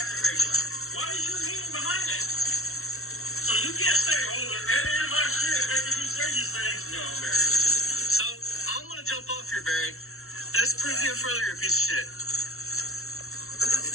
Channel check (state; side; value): late; right; 0.62 ms